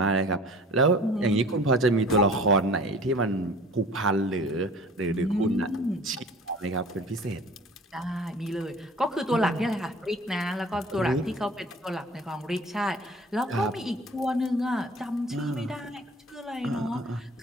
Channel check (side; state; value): both; normal; correlation 0.45